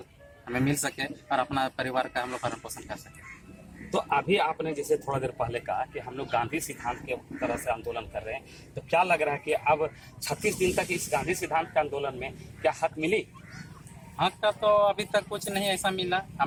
हमें मिल सके और अपना परिवार का हम लोग भरण पोषण कर सके। तो अभी आपने जैसे थोड़ा देर पहले कहा कि हम लोग गांधी सिद्धांत के तरह से आंदोलन कर रहे हैं, तो क्या लग रहा है कि अब 36 दिन तक इस गांधी सिद्धांत के आंदोलन में क्या हक मिली? हक का तो अभी तक कुछ नहीं ऐसा मिला,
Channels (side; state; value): both; identical; correlation 1.00